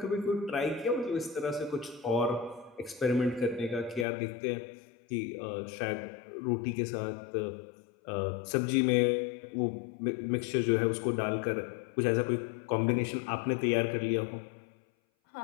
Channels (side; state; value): right; drops out; at 4.0 s